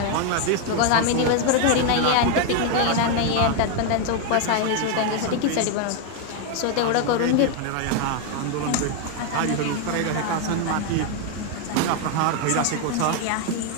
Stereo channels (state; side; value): different; both; correlation 0.01